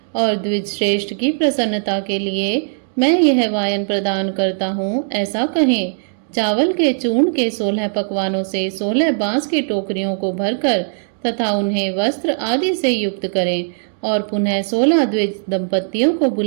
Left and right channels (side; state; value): left; silent; digital silence